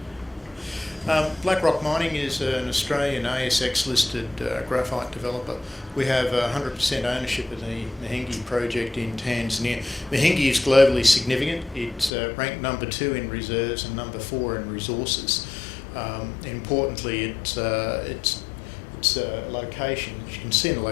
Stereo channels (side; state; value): right; drops out; at 12.1 s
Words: we go. Black Rock Mining is an Australian ASX-listed graphite developer. We have 100% ownership of the Mahenge project in Tanzania. Mahenge is globally significant. It's ranked number 2 in reserves and number 4 in resources. Importantly, its location, as you can see in the